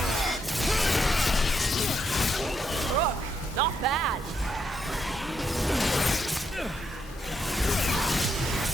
Rook, not bad.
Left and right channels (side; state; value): both; normal; correlation 0.78